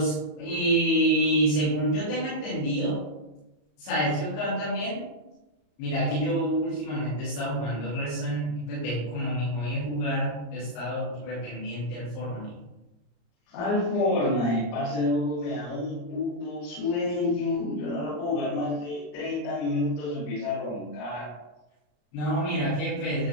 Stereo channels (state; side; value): late; right; 34 ms